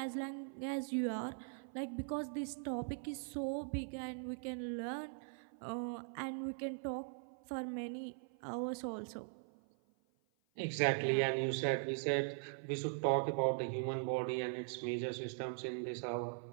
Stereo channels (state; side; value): silent; left; 50 dB below the other